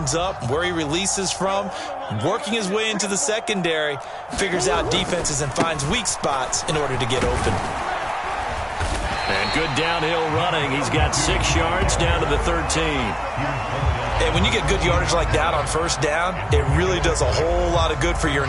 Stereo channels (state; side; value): identical; both; correlation 1.00